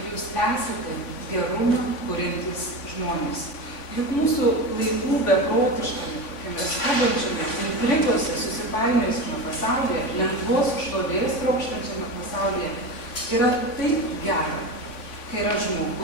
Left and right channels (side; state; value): right; late; 3.5 ms